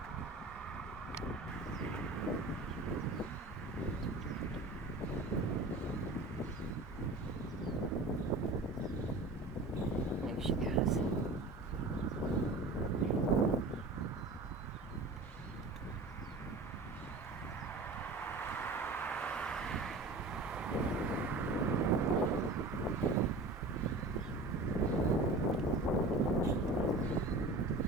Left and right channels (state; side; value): quieter; left; 3.1 dB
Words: There she goes.